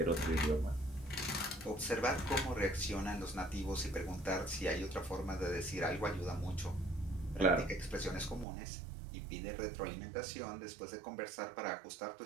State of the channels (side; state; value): left; drops out; at 8.5 s